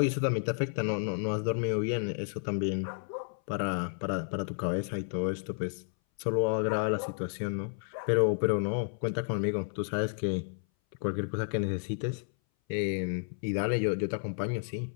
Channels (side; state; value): right; silent; 57 dB below the other